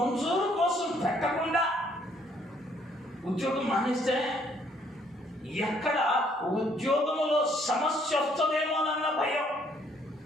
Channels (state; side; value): normal; both; correlation 0.65